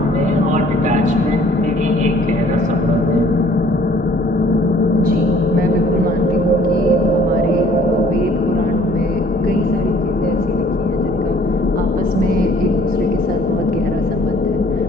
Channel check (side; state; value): both; normal; correlation 0.56